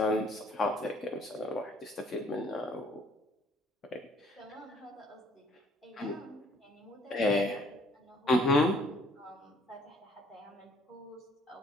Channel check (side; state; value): both; normal; correlation 0.60